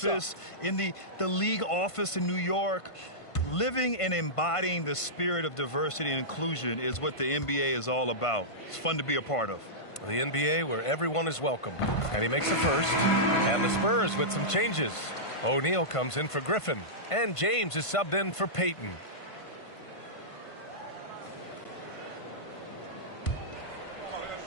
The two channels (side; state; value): right; late; 1.5 ms